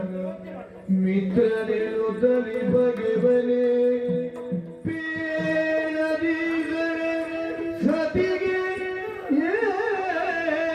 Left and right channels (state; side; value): identical; both; correlation 1.00